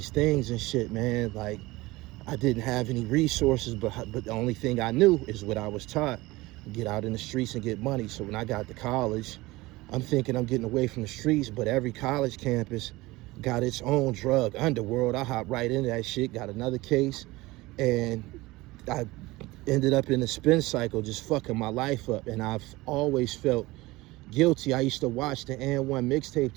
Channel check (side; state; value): left; quieter; 20.5 dB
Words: things and shit, man. Like, I didn't have any resources, but the only thing I knew is what I was taught: get out in the streets and get money. So when I got to college, I'm thinking I'm getting away from the streets, but every college campus got its own drug underworld. I hopped right into that shit, got another case, and I ended up in a spin cycle, just fucking my life up. And I've always felt guilty. I used to watch the N1 mixtape